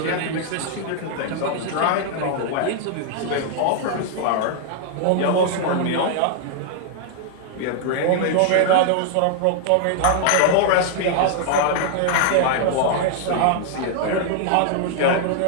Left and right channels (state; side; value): different; both; correlation 0.00